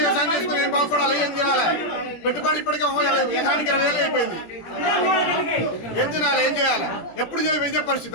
వ్యవసాయం చేసుకుని ఏం బాగుపడాలి? ఏం తినాలి? పెట్టుబడి ఇప్పటికే ఎకరానికి 20,000 అయిపోయింది. ఏం తినాలి? ఏం చేయాలి? ఎప్పుడు ఇదే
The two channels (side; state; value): right; late; 17 ms